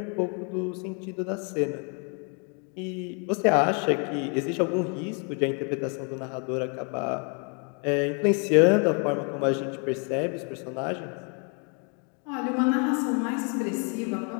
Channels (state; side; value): quieter; right; 37.8 dB